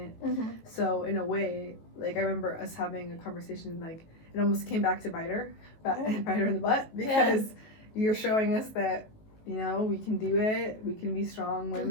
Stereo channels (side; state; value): right; late; 19 ms